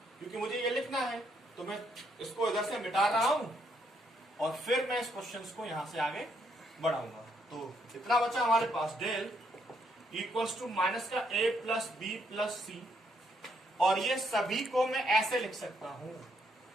क्योंकि मुझे ये लिखना है, तो मैं इसको इधर से मिटा रहा हूं और फिर मैं इस क्वेश्चन को यहां से आगे बढ़ाऊंगा। तो इतना बचा हमारे पास, डेल इक्वल्स टू माइनस का a plus B plus C, और ये सभी को मैं ऐसे लिख सकता हूं,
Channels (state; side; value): normal; both; correlation 0.74